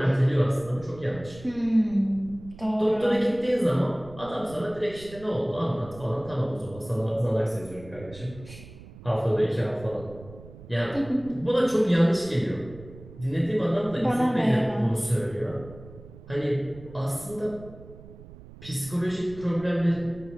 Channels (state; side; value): noise; right; rumble, 18 dB below the sound